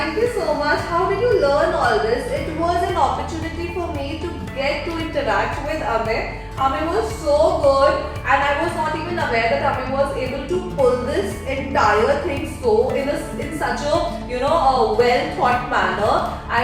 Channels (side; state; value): both; identical; correlation 1.00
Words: you so much. How did you learn all this? It was an opportunity for me to get to interact with Amey. Amey was so good, and I was not even aware that Amey was able to pull this entire thing so in such a a well thought manner.